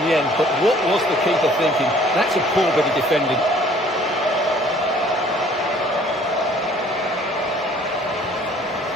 the end, but what was the keeper thinking? That's a poor bit of defending.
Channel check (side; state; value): both; normal; correlation 0.56